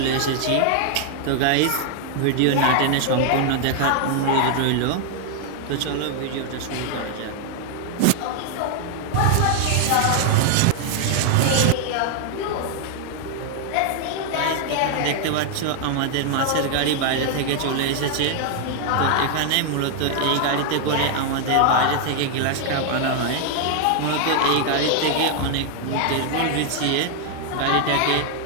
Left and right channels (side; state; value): both; different; correlation 0.00